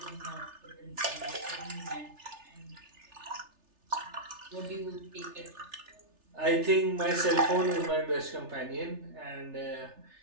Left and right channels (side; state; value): left; late; 3.3 ms